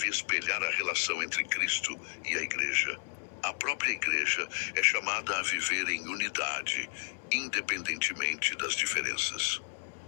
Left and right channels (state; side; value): silent; right; 56 dB below the other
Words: espelhar a relação entre Cristo e a Igreja, a própria Igreja é chamada a viver em unidade, independentemente das diferenças.